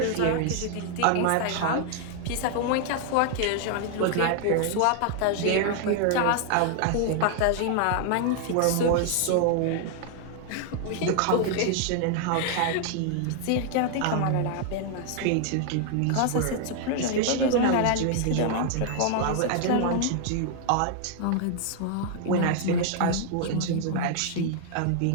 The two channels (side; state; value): both; different; correlation 0.00